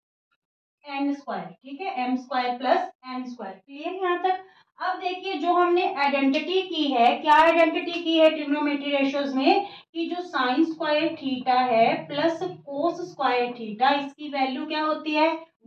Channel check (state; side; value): identical; both; correlation 1.00